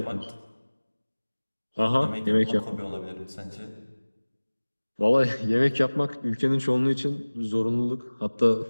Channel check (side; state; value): both; inverted; correlation -1.00